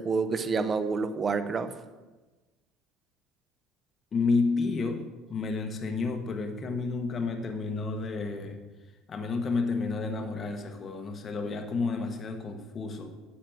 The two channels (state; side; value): normal; both; correlation 0.74